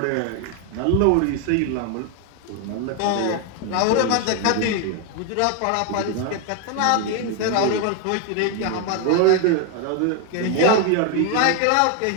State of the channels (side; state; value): both; different; correlation 0.01